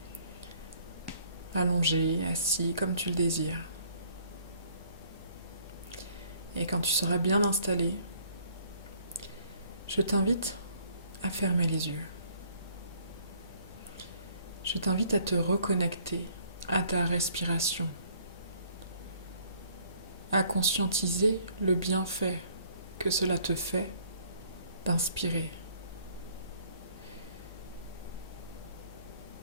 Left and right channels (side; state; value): both; inverted; correlation -0.60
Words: allongé, assis comme tu le désires. Et quand tu seras bien installé, je t'invite à fermer les yeux. Je t'invite à te reconnecter à ta respiration, à conscientiser le bienfait que cela te fait d'inspirer.